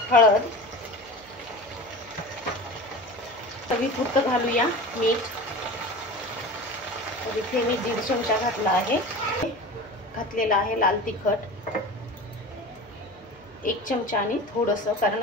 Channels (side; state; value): left; noise; hum, 27 dB below the sound